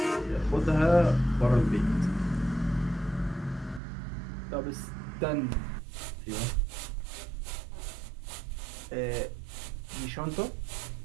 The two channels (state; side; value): drops out; left; at 3.8 s